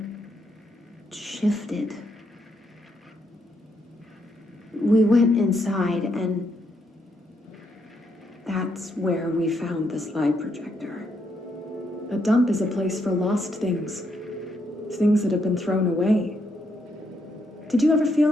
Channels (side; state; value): both; normal; correlation 0.77